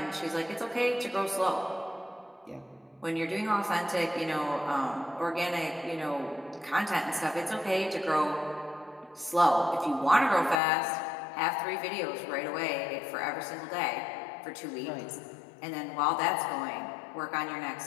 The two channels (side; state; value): right; drops out; at 10.6 s